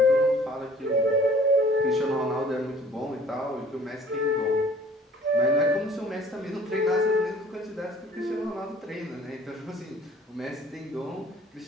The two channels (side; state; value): both; normal; correlation 0.53